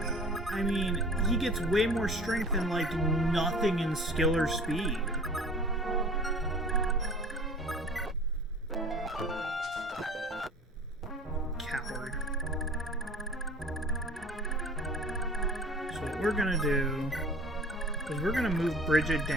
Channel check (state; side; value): normal; both; correlation 0.45